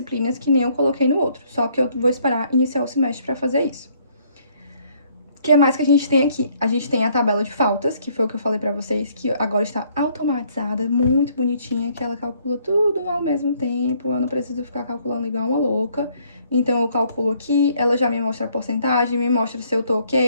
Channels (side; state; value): both; inverted; correlation -0.65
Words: que nem eu coloquei no outro, só que eu vou esperar iniciar o semestre para fazer isso. O que mais que a gente tem aqui? A gente tem a tabela de faltas, que foi o que eu falei pra vocês, que agora está automatizada, muito bonitinha, que ela calcula tudo ao mesmo tempo, eu não preciso ficar calculando igual uma louca. Então, eu calculo aqui, ela já me mostra a porcentagem, me mostra se eu tô